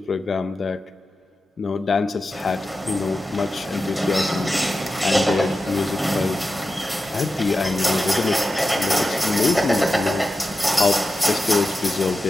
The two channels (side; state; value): both; normal; correlation 0.92